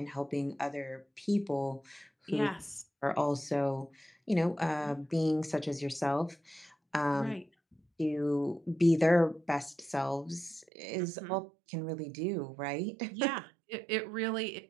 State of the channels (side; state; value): left; drops out; at 10.7 s